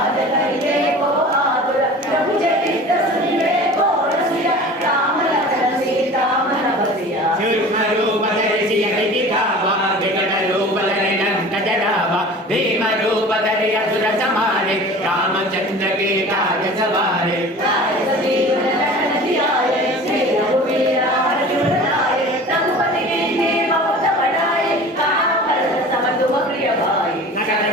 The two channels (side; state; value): both; normal; correlation 0.40